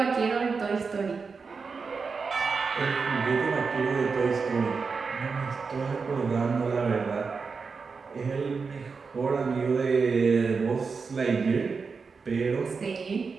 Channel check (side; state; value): left; quieter; 5.0 dB